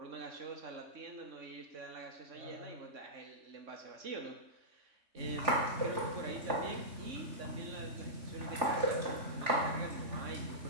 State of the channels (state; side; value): late; left; 3.4 ms